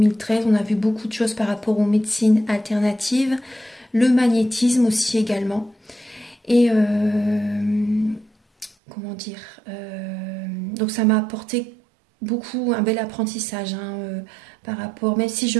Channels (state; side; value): drops out; left; at 8.8 s